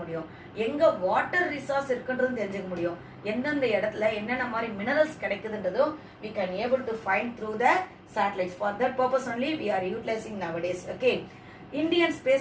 முடியும், எங்க வாட்டர் ரிசோர்ஸ் இருக்குன்றதும் தெரிஞ்சுக்க முடியும், எந்தெந்த இடத்துல என்னென்ன மாதிரி minerals கிடைக்குதுன்றதும் we can able to find through the satellites. For that purpose only we are utilizing nowadays. Okay, Indian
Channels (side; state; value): both; identical; correlation 1.00